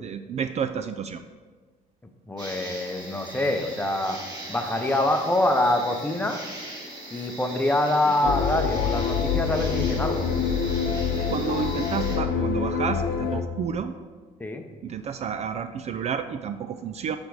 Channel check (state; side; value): normal; both; correlation 0.52